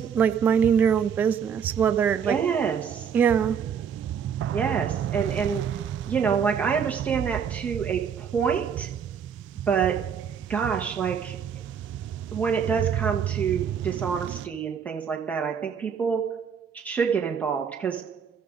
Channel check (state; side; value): quieter; left; 7.3 dB